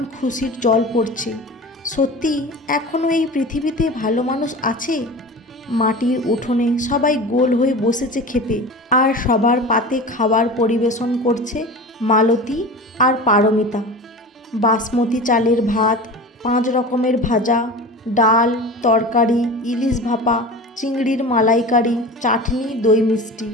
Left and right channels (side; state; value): both; normal; correlation 0.33